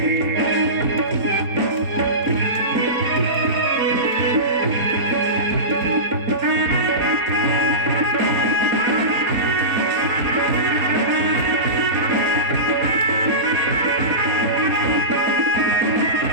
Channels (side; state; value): left; late; 4.2 ms